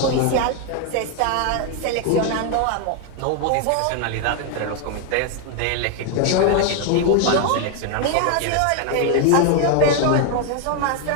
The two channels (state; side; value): different; both; correlation 0.00